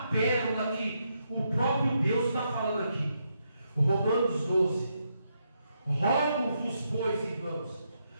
pérola que o próprio Deus está falando aqui. Romanos 12. Rogo-vos, pois, irmãos,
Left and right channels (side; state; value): both; inverted; correlation -0.80